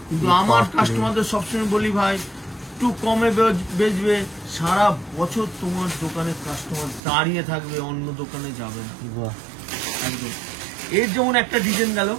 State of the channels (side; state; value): left; drops out; at 7.0 s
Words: কিন্তু আমার কাস্টমারদের সবসময় বলি ভাই একটু কমে বেচবে, সারা বছর তোমার দোকানে কাস্টমার দাঁড়িয়ে থাকবে, অন্য দোকানে যাবে না বাহ, একদম। এর যেমন একটা ডিজাইন গেল,